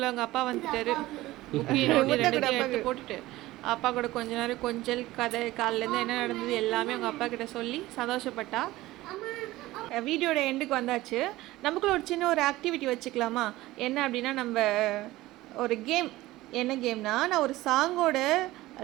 அவங்க அப்பா வந்துட்டாரு. எடுத்து போட்டுட்டு அப்பா கூட கொஞ்ச நேரம் கொஞ்சல் கதை, காலிலேருந்து என்ன நடந்தது எல்லாமே அவங்க அப்பா கிட்ட சொல்லி சந்தோஷப்பட்டா. வீடியோட எண்டுக்கு வந்தாச்சு. நமக்குள்ள ஒரு சின்ன ஒரு ஆக்டிவிட்டி வச்சுக்கலாமா? என்ன அப்படின்னா, நம்ம ஒரு கேம். என்ன கேம்னா, நான் ஒரு சாங்கோட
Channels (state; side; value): quieter; left; 17.7 dB